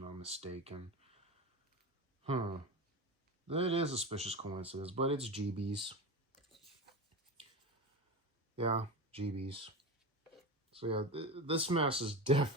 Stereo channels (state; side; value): normal; both; correlation 0.24